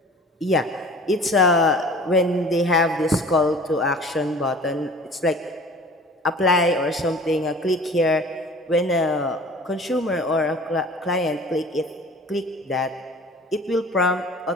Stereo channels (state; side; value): normal; both; correlation 0.45